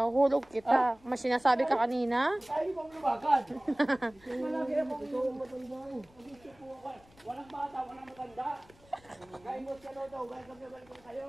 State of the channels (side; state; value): left; noise; rumble, 27 dB below the sound